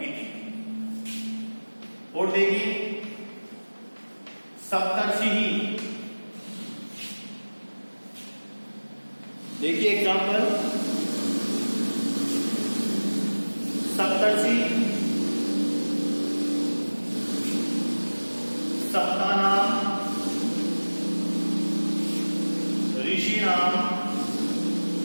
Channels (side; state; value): both; inverted; correlation -1.00